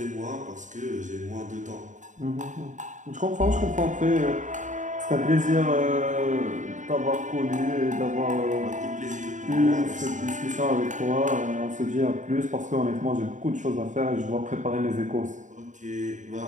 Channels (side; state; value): left; late; 0.36 ms